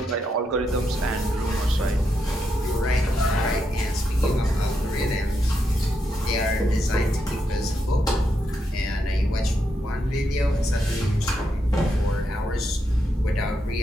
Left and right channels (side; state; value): both; normal; correlation 0.82